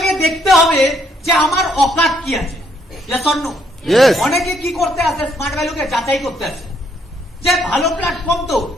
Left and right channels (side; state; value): both; normal; correlation 0.70